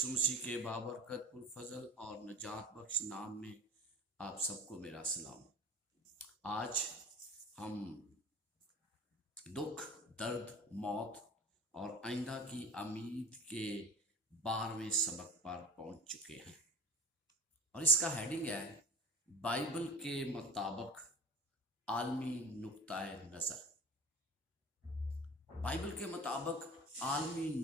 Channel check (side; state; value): both; normal; correlation 0.37